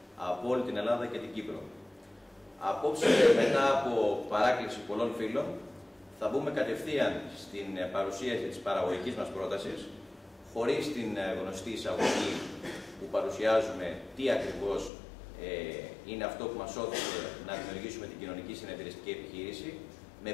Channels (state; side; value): drops out; right; at 14.9 s